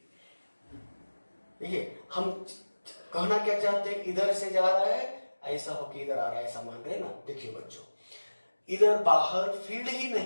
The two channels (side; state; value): both; inverted; correlation -1.00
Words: देखिए, हम कहना क्या चाहते हैं? इधर से जा रहा है, ऐसा हो कि इधर आ रहा है, ऐसा मान रहे ना। देखिए बच्चों, इधर बाहर फील्ड ही